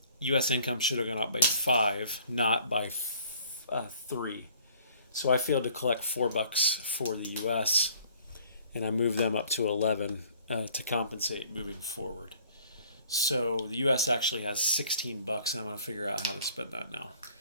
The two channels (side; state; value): both; inverted; correlation -0.56